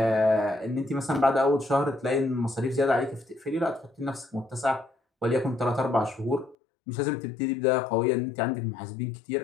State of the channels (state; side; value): drops out; right; at 6.6 s